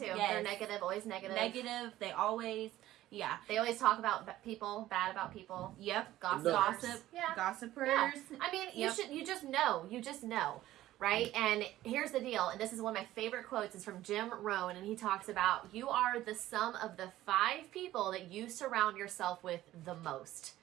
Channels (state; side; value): quieter; left; 14.7 dB